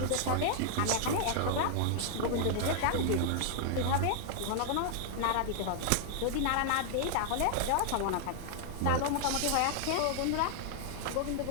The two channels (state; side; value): different; both; correlation 0.00